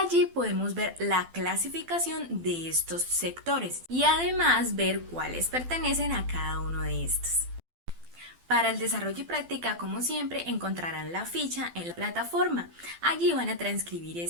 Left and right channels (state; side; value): late; left; 12 ms